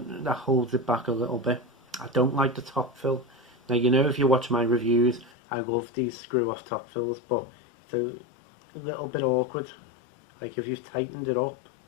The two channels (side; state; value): right; drops out; at 5.3 s